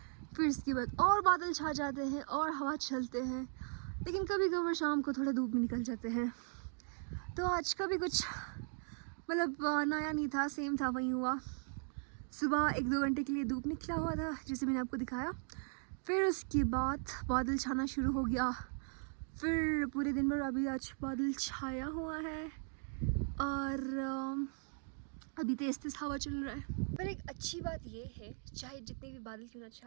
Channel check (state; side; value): silent; left; 52 dB below the other